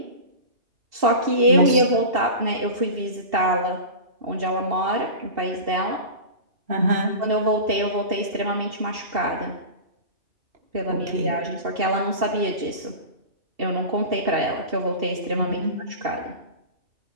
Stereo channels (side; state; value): left; late; 2.7 ms